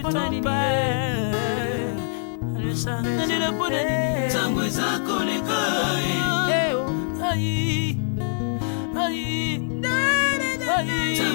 nini. Nalela pona nini. Tangwe zako leka. Ai.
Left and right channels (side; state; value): right; silent; digital silence